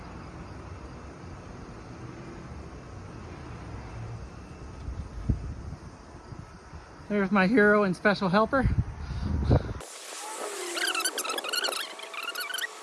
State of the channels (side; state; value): both; identical; correlation 1.00